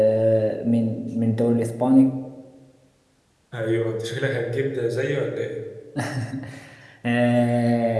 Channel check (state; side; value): identical; both; correlation 1.00